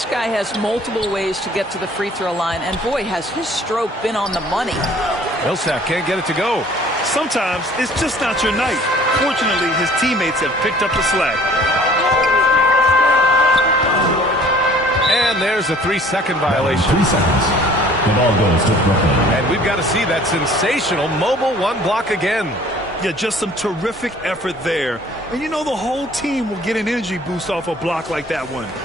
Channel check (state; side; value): normal; both; correlation 0.53